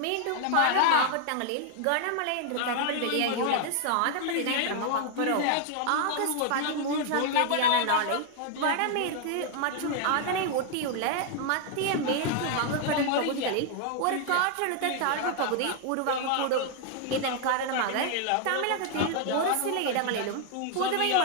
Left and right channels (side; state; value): both; different; correlation 0.00